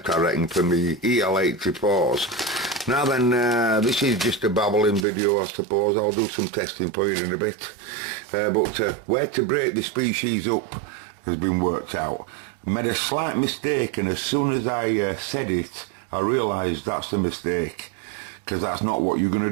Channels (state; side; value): drops out; left; at 5.1 s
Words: I reckon, for me EL84s. Now then, this is just a babbling video, I suppose. I'll do some testing for you in a bit. But where to break the species up has been worked out. I made a slight mistake, and as soon as I said it, I realised that's a mistake, because that's not what you're going to